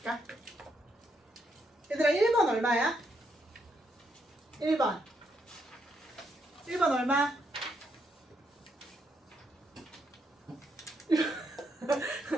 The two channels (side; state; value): both; normal; correlation 0.77